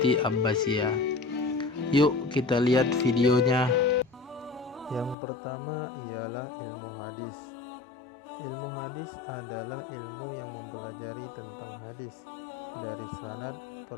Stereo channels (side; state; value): right; drops out; at 5.2 s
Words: Abbasiyah. Yuk kita lihat videonya. Yang pertama ialah ilmu hadis. Ilmu hadis adalah ilmu yang mempelajari tentang hadis, dari sanad,